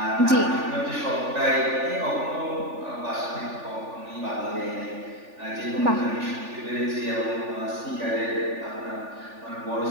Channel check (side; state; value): left; late; 3.4 ms